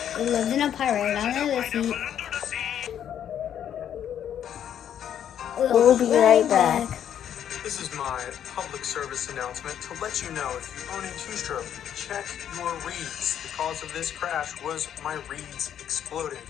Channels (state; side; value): quieter; right; 9.7 dB